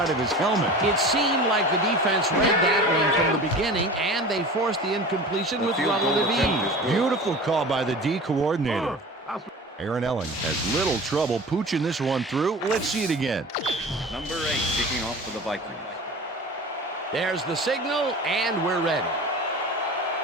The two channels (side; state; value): both; normal; correlation 0.36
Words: of his helmet. It seemed like the defense read that one from the beginning, and they forced the incompletion with relative ease. Beautiful call by the D coordinator. Aaron Elling has little trouble pooching this one through. Let's see it again. Number 8 kicking off for the Vikings. There's the signal, and we're ready.